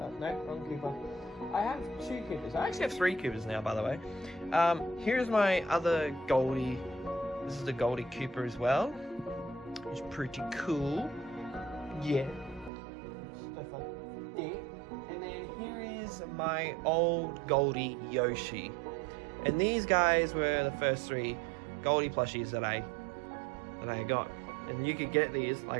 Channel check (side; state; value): left; drops out; at 12.7 s